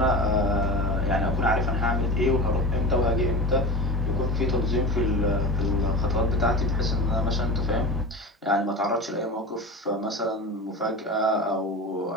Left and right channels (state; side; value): normal; both; correlation 0.30